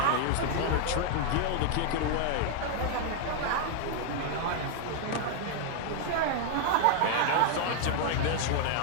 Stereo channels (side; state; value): both; different; correlation 0.01